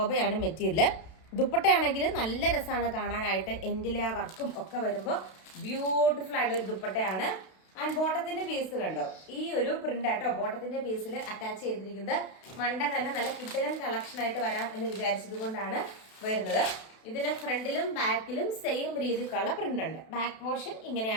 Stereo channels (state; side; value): late; right; 32 ms